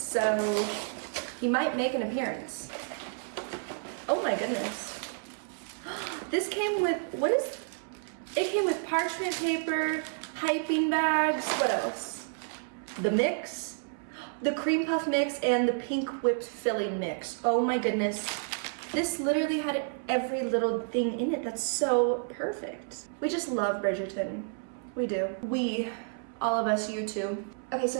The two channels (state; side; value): silent; left; 58 dB below the other